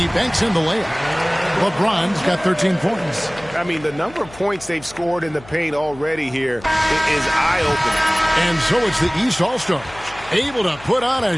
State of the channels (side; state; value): left; noise; hum, 20 dB below the sound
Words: banks in the layup. LeBron's got 13 points. I mean, the number of points they've scored in the paint already here is eye-opening. And so it's the East All-Stars, able to put on a